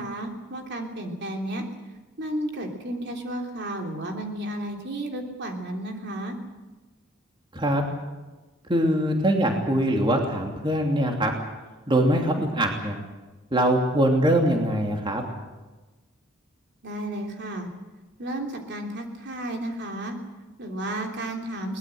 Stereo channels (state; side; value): normal; both; correlation 0.59